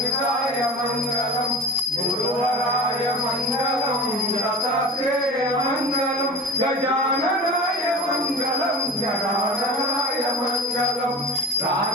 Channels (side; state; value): both; normal; correlation 0.33